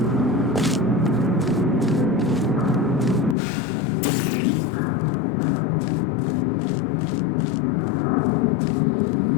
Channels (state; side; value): drops out; right; at 3.4 s